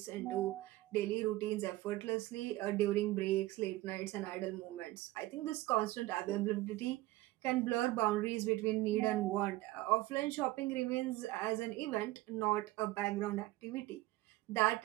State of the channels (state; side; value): quieter; left; 17.8 dB